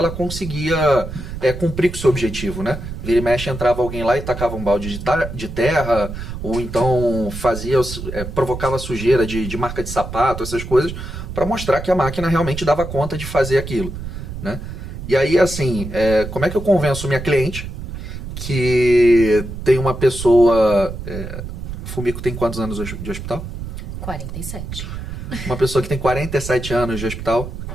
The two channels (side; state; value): right; noise; rumble, 8 dB below the sound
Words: conseguia cumprir com o seu objetivo, né? Vira e mexe, entrava alguém lá e tacava um balde de terra, ou então provocava sujeira de marca de sapato, essas coisas, para mostrar que a máquina realmente dava conta de fazer aquilo, né? E aí, assim, como é que eu convenço minha cliente que tem uma pessoa... Fumico tem quantos anos de hospital? 47. Uma pessoa que tem 47 anos de hospital,